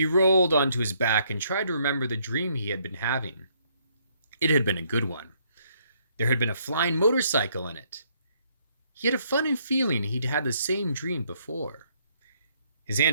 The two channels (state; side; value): inverted; both; correlation -0.69